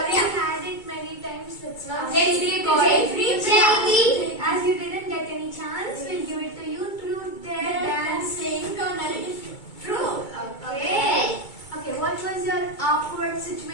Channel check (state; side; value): late; right; 2.2 ms